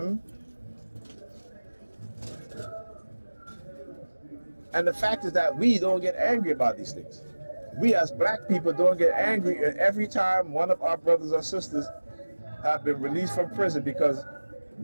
And the fact is that we don't get angry about these things. We as black people don't get angry every time one of our brothers or sisters have been released from prison because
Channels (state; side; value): inverted; both; correlation -1.00